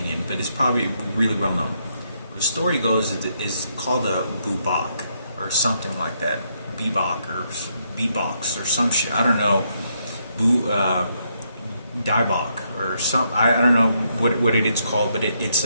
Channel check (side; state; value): both; inverted; correlation -0.76